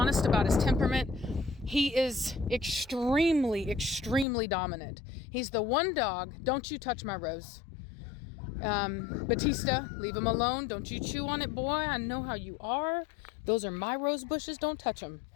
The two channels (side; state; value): right; drops out; at 4.2 s